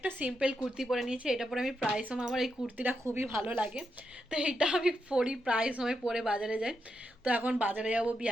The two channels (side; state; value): both; normal; correlation 0.84